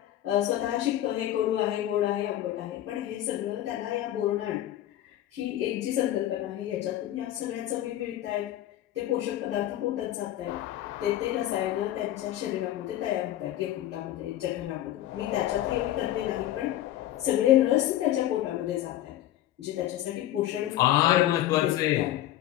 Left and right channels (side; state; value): right; quieter; 13.3 dB